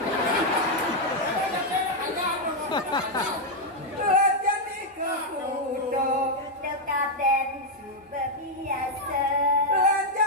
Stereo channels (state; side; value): normal; both; correlation 0.00